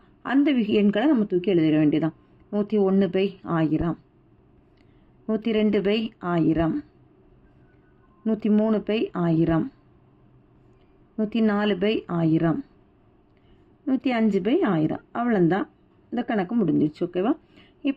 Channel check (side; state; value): both; identical; correlation 1.00